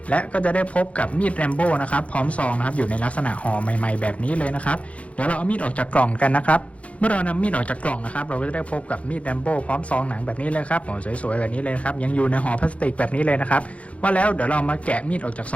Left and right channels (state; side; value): late; right; 0.064 ms